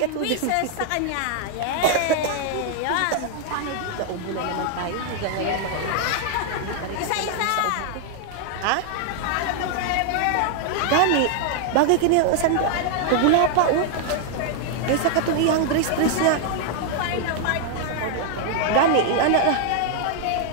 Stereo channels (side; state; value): both; different; correlation 0.00